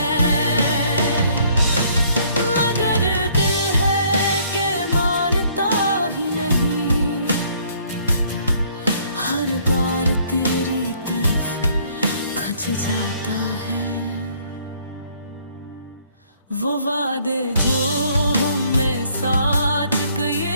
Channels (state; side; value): inverted; both; correlation -0.63